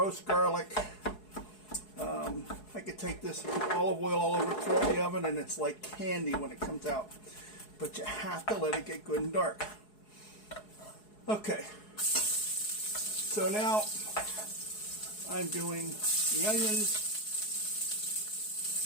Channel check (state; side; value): late; right; 4.7 ms